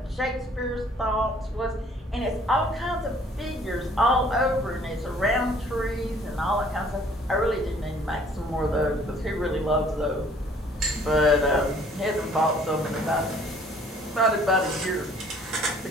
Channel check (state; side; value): normal; both; correlation 0.57